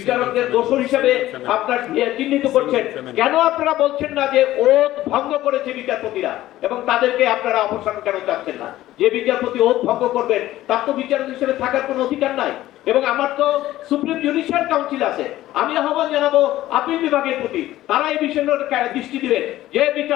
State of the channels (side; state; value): right; quieter; 15.0 dB